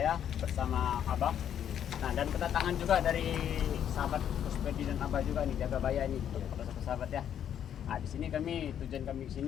bersama Abah. Nah, dan kedatangan juga dari sahabat Puspedi dan Abah juga nih, jaga baya ini, sahabat ya. Nah, di sini tujuan kami ke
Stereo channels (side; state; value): right; quieter; 9.5 dB